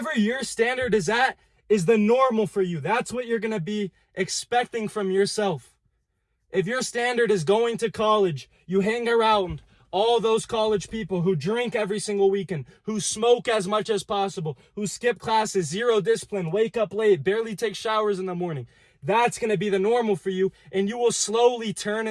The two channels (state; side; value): identical; both; correlation 1.00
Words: your standard is at is the normal for you. That's what you're going to be expecting from yourself. If your standard is going to college, you hang around all those college people who drink every single weekend, who smoke as much as possible, who skip classes, zero discipline, wake up late, barely take showers in the morning. That's going to be the normal for you, and you will slowly turn